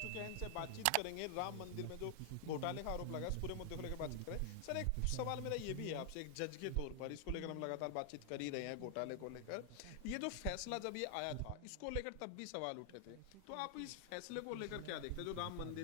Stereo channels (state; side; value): different; both; correlation 0.00